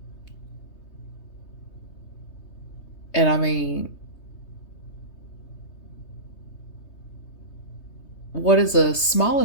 And I mean, what is a small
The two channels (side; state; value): right; late; 3.2 ms